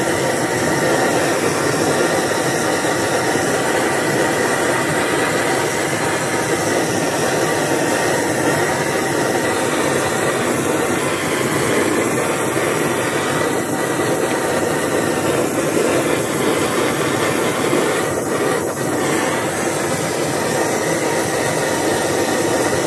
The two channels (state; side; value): identical; both; correlation 1.00